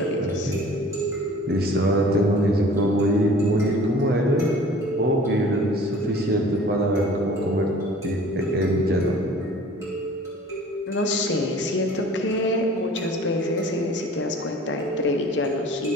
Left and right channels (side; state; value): both; normal; correlation 0.48